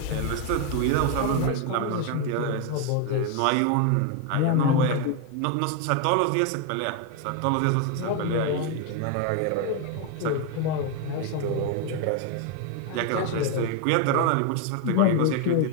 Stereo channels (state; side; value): different; both; correlation 0.01